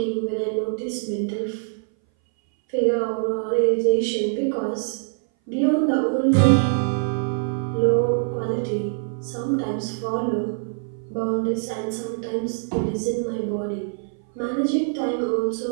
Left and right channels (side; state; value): left; silent; 59 dB below the other